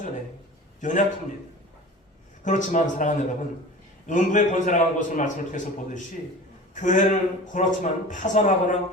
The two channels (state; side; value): normal; both; correlation 0.37